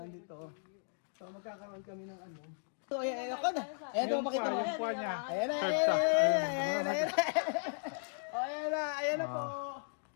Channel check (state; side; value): silent; right; digital silence